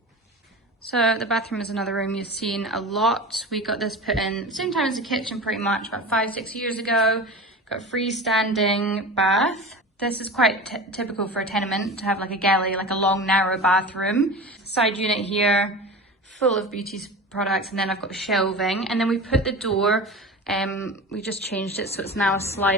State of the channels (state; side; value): normal; both; correlation 0.32